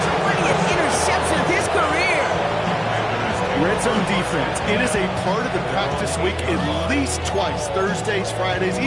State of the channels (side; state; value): both; identical; correlation 1.00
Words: interception zone defense. It is a part of the practice week at least twice, Thursdays, Fridays,